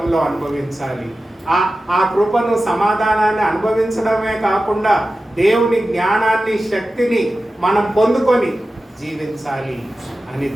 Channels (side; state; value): both; normal; correlation 0.94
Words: అనుభవించాలి. ఆ కృపను, సమాధానాన్ని అనుభవించడమే కాకుండా దేవుని జ్ఞానాన్ని, శక్తిని మనం పొందుకొని జీవించాలి అని